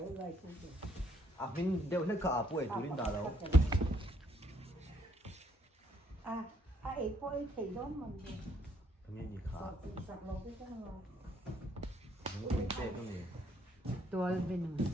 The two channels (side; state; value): both; normal; correlation 0.69